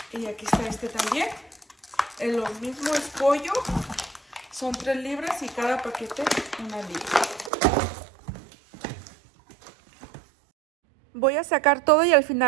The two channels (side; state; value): left; drops out; at 7.5 s